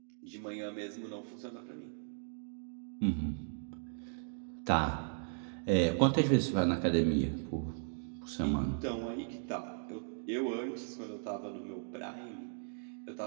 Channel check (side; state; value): left; silent; digital silence